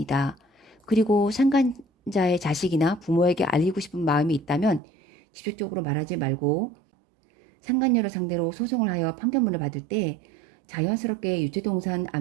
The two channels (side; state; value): left; drops out; at 4.8 s